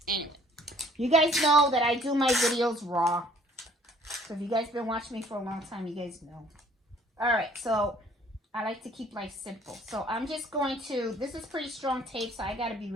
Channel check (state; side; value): normal; both; correlation 0.58